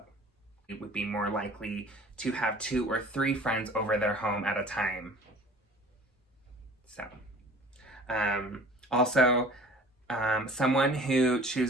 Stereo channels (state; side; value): normal; both; correlation 0.47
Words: It would be more likely to have 2 or 3 friends over their home at a time. So, also, someone who